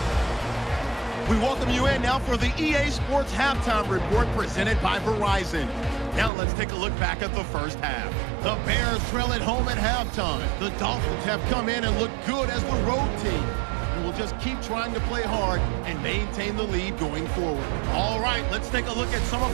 We welcome you in now for the EA Sports Halftime Report presented by Verizon. Now let's take a look back at the first half. The Bears trail at home at halftime. The Dolphins have come in and looked good as the road team. And we'll just keep trying to play hard and maintain the lead going forward. All right, let's take a look at some of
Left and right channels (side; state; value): left; drops out; at 6.3 s